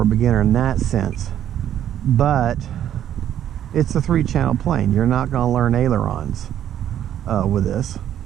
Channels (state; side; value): quieter; left; 10.7 dB